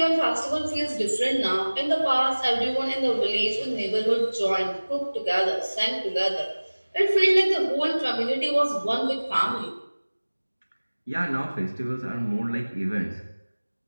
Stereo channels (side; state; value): both; inverted; correlation -1.00